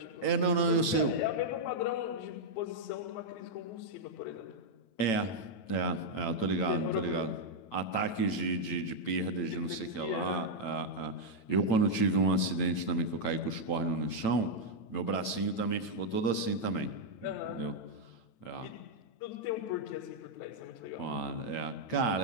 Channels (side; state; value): right; late; 9.0 ms